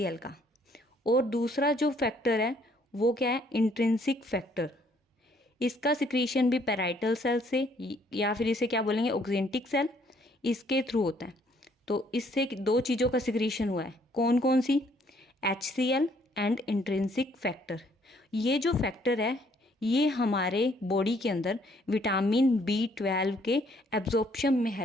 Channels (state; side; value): normal; both; correlation 0.65